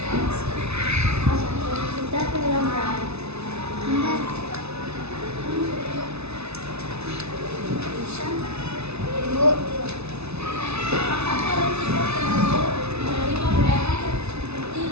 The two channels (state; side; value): late; left; 0.80 ms